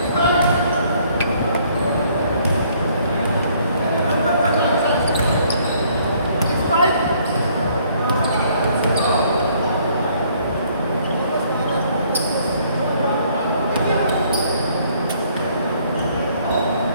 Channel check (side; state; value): both; inverted; correlation -0.63